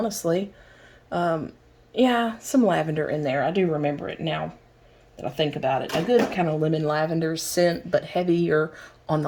Yeah, some lavender in there. I do remember it now that I think about it. A good kind of lemon lavender scent, but heavier on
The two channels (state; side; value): identical; both; correlation 1.00